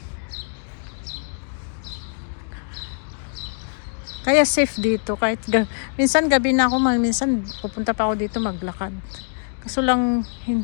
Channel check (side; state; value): right; silent; digital silence